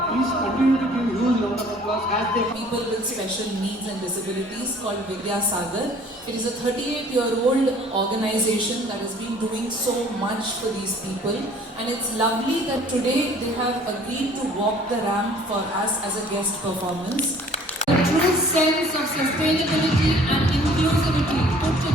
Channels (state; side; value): normal; both; correlation 0.53